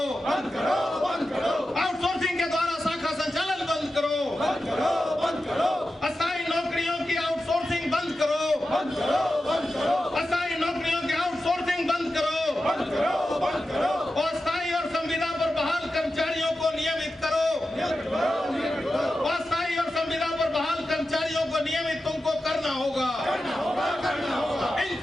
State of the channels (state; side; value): normal; both; correlation 0.92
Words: आउटसोर्सिंग के द्वारा शाखा संचालन बंद करो! अस्थायी नौकरियों की आउटसोर्सिंग बंद करो! अस्थायी नौकरियों की आउटसोर्सिंग बंद करो! अस्थायी और संविदा पर बहाल कर्मचारियों को नियमित करो! अस्थायी और संविदा पर बहाल कर्मचारियों को नियमित तुमको करना होगा!